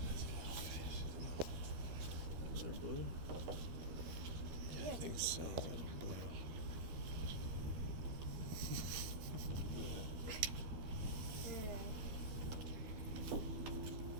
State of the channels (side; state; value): left; late; 13 ms